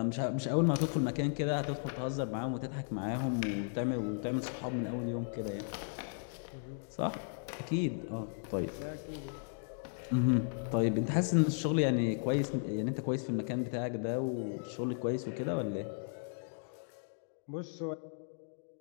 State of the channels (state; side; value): silent; right; digital silence